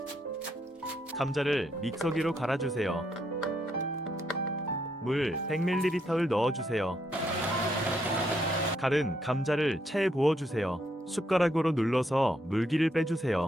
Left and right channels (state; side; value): normal; both; correlation 0.76